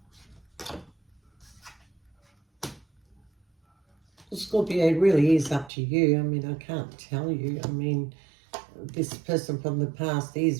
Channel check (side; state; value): left; drops out; at 5.7 s